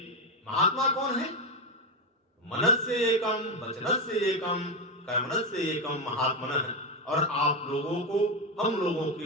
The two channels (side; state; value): both; normal; correlation 0.09